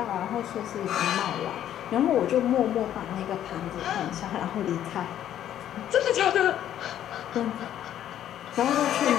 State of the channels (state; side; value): quieter; right; 11.1 dB